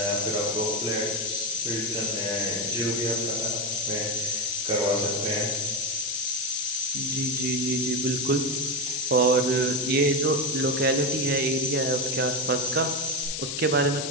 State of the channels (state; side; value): noise; left; hiss, 3 dB below the sound